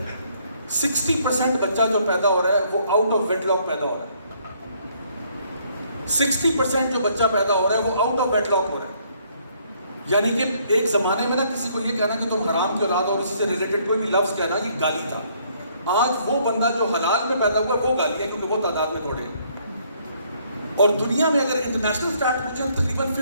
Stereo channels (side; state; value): both; inverted; correlation -0.66